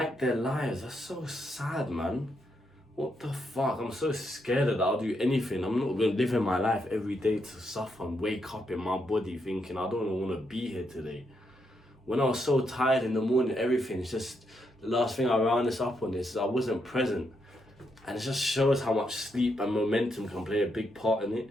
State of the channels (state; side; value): normal; both; correlation 0.80